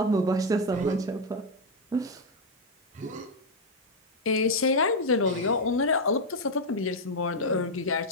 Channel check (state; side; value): normal; both; correlation 0.01